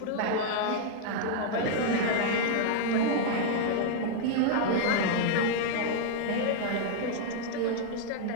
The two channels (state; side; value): different; both; correlation -0.01